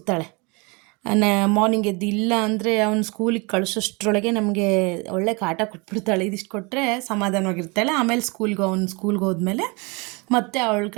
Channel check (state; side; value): quieter; left; 29.0 dB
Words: ಮಾರ್ನಿಂಗ್ ಎದ್ದು, ಇಲ್ಲ ಅಂದರೆ ಅವ್ನು ಸ್ಕೂಲಿಗೆ ಕಳಿಸೋಷ್ಟ್ರೊಳಗೆ ನಮಗೆ ಒಳ್ಳೆ ಕಾಟ ಕೊಟ್ಬಿಡ್ತಾಳೆ. ಇದಿಷ್ಟು ಕೊಟ್ಟರೆ ಸಮಾಧಾನವಾಗಿರ್ತಾಳೆ. ಆಮೇಲೆ ಸ್ಕೂಲ್ಗೆ ಹೋದ್ಮೇಲೆ ಮತ್ತೆ ಅವಳ